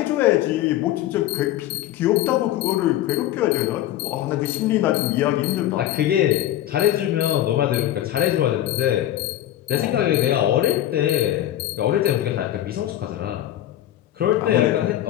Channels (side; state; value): right; quieter; 12.9 dB